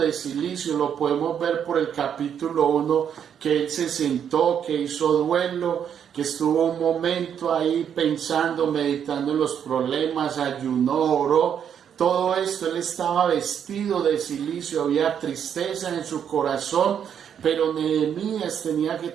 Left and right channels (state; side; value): quieter; left; 8.4 dB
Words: cilicio. Lo podemos ver por el capítulo 1, que él se sentó, que hizo duelo, que estuvo un momento ahí pensando, meditando en los problemas, ayunó, oró. Todo esto, él estaba vestido de cilicio, había tristeza en su corazón, pero Nehemías tenía que